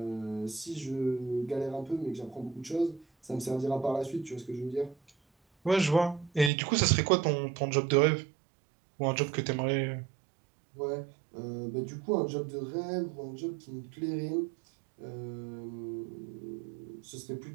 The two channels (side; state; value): left; drops out; at 6.5 s